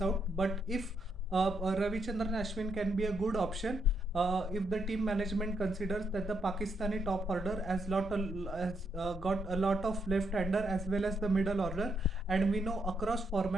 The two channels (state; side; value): normal; both; correlation 0.78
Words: out. But if Ravichandran Ashwin can be a good option, if the team management considers that the Pakistani top order has got a lot of left-hander as well as the middle order, and we know across